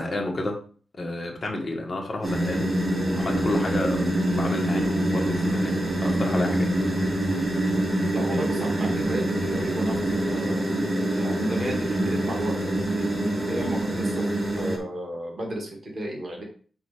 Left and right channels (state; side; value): normal; both; correlation 0.89